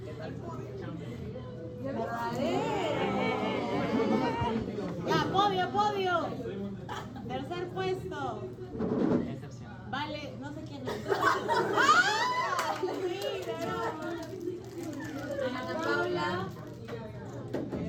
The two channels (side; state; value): both; identical; correlation 1.00